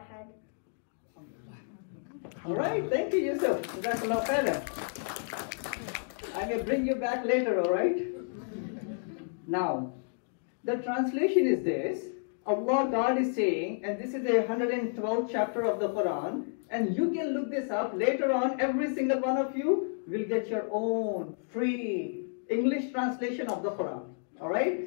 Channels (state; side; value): silent; right; digital silence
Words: أحد. All right, thank you, Yusuf. Jazakallah khairan. I will bring you back later, all right? Now, the translation is this. Allah, God is saying, and this is the 112th chapter of the Quran, and you can look this up later on. Every single one of you will get your own free English translation of the Quran, all right?